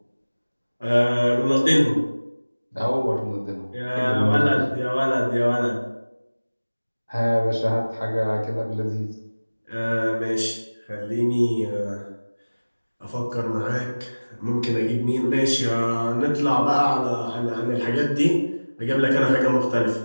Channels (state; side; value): inverted; both; correlation -1.00